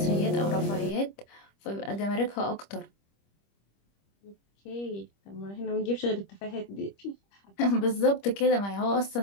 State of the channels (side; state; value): right; late; 25 ms